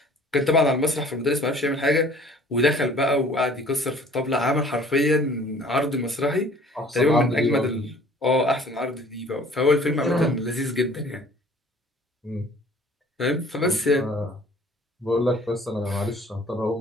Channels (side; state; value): both; normal; correlation 0.52